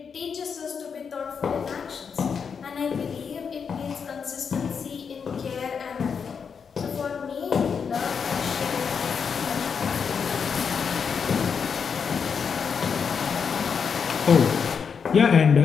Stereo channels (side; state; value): right; quieter; 6.3 dB